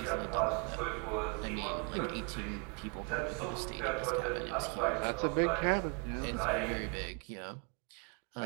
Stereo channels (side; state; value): left; quieter; 34.5 dB